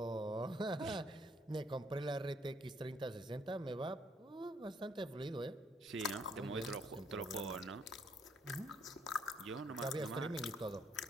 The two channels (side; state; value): both; normal; correlation 0.68